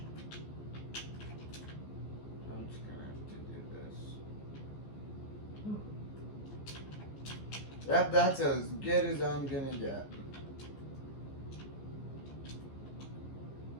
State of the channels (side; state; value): right; late; 14 ms